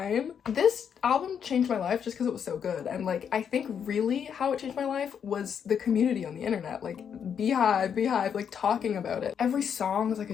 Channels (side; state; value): right; quieter; 7.8 dB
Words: This album changed my life just because it was so good, and like I think really how it changed my life was the community on the internet, like Beehive, like talking about it. Every song was like